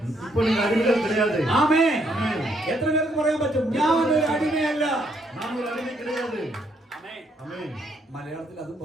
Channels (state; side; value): normal; both; correlation 0.72